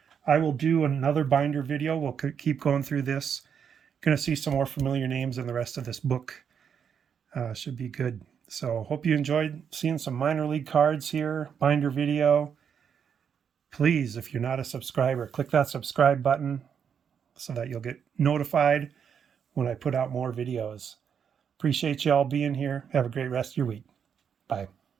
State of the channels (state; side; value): quieter; left; 7.5 dB